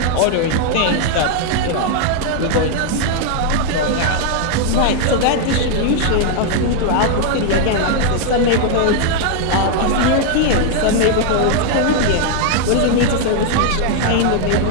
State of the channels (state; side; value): different; both; correlation 0.00